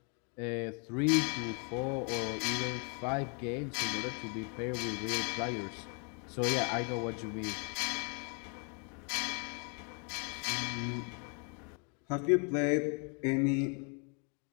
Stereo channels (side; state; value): right; quieter; 37.5 dB